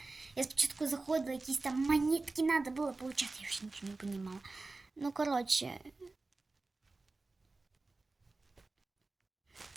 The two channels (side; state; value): left; quieter; 3.5 dB